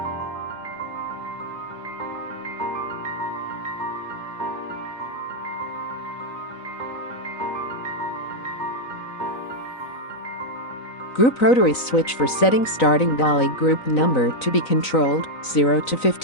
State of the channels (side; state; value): right; late; 3.9 ms